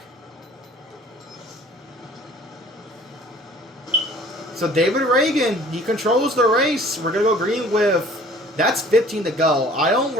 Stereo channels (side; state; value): both; normal; correlation 0.51